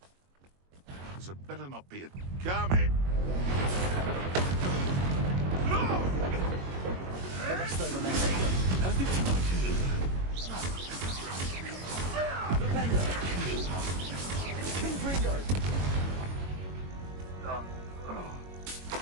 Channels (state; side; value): late; left; 22 ms